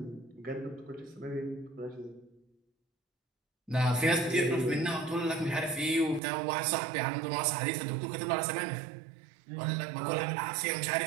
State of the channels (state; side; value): drops out; left; at 6.2 s